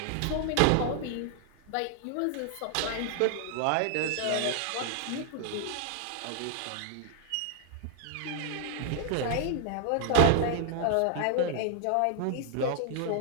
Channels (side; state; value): both; different; correlation 0.00